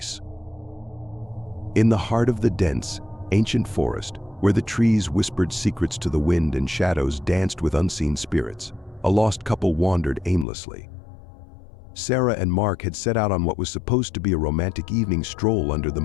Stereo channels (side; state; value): right; drops out; at 10.5 s